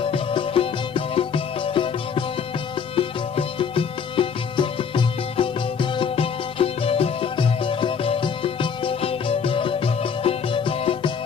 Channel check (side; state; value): right; quieter; 6.6 dB